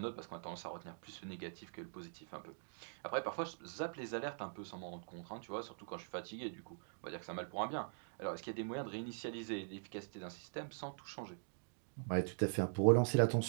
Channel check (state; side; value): silent; left; digital silence